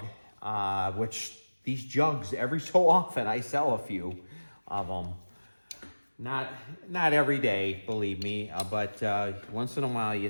which these jugs, every so often, I sell a few of them. Not every day, believe me, but once in a while you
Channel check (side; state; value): both; inverted; correlation -1.00